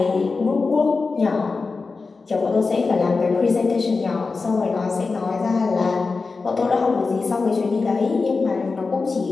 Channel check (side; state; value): right; quieter; 4.2 dB